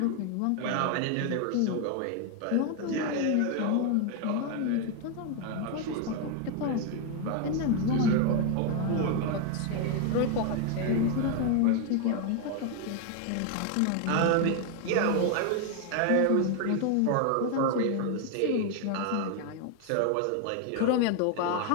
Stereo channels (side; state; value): both; different; correlation 0.00